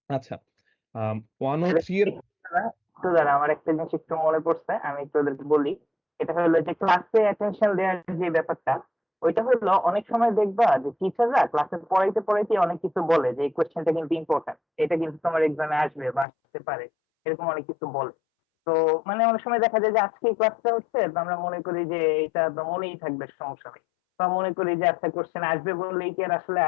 আচ্ছা, 103 এর একটু দাঁড়া, আমার একটা জিনিস একটু মনে পড়ছে, আমি একটু ওদেরকে বলি। এটা হলো যে ক্লাসে অ্যাটেনশন দেওয়ার যে ব্যাপারটা, ওইটা হলো অনেক সময় দেখবা যে টিচাররা ক্লাসে পড়াইতে পড়াইতে অনেক কিছু বলে যে এই কোয়েশ্চেনটা কিন্তু ইম্পর্টেন্ট, এটা কিন্তু তোমার এক্সামে আসবে বা আসতে পারে, এরকম অনেক কিছু বলে। তো মানে অনেক সময় দেখা যায় যে আজকে এই ক্লাসটা হচ্ছে, তো আমরা মনে করি যে এটা তো মনেই থাকবে, সমস্যা নেই, বা মনে করি যে আচ্ছা কোয়েশ্চেন আসবে বললেই কি আর আসলে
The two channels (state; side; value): drops out; right; at 16.2 s